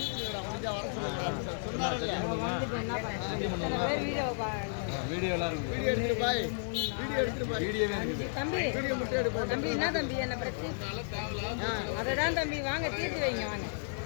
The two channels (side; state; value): right; silent; digital silence